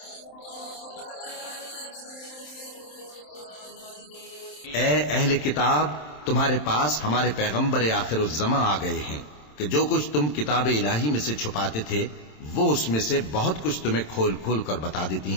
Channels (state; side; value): late; right; 27 ms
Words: على كل شيء قدير। ए अहले किताब, तुम्हारे पास हमारे पैगंबर आखिरुज़्ज़मा आ गए हैं कि जो कुछ तुम किताब इलाही में से छुपाते थे वो उसमें से बहुत कुछ तुम्हें खोल खोल कर बता देती